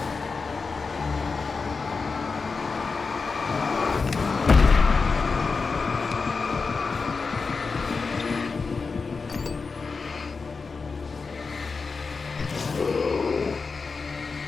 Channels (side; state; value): right; quieter; 4.6 dB